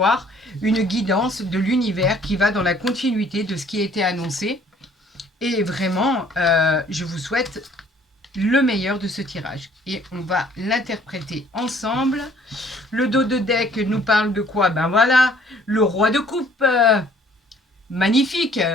une guidance de l'univers qui va dans la continuité de ce qui a été annoncé. Et vraiment, je vous souhaite le meilleur de ce tirage. Et on va l'interpréter ensemble. Le dos de deck nous parle de quoi? Ben voilà, le roi de coupe. Magnifique.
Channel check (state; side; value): normal; both; correlation 0.58